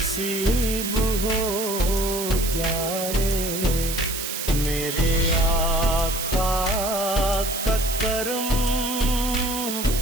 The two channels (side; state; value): right; noise; hiss, 4 dB below the sound